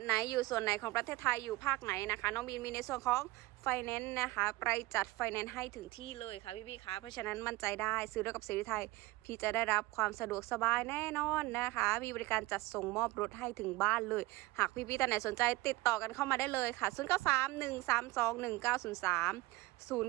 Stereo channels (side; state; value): left; quieter; 20.1 dB